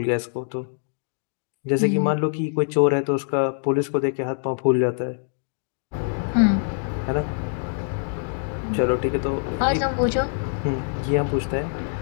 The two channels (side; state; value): right; silent; 57 dB below the other